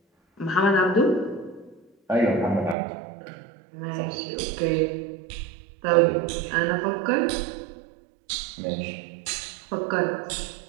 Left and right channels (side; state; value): left; drops out; at 2.8 s